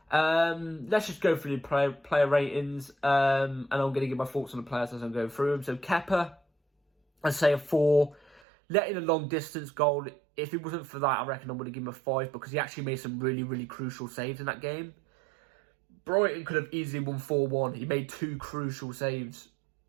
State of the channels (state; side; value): drops out; left; at 8.4 s